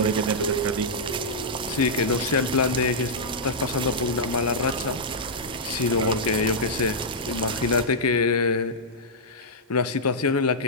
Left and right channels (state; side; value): normal; both; correlation -0.09